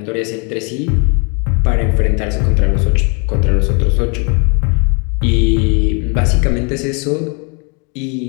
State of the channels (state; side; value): quieter; right; 34.7 dB